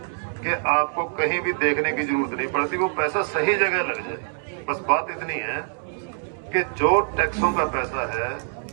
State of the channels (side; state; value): left; silent; digital silence